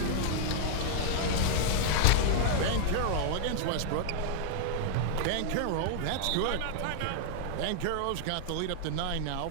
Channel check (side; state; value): both; different; correlation -0.01